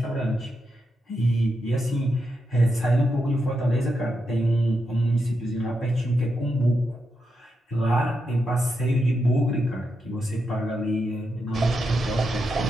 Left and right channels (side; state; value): both; normal; correlation 0.85